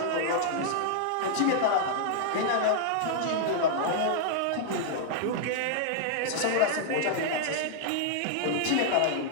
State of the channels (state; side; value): different; both; correlation -0.01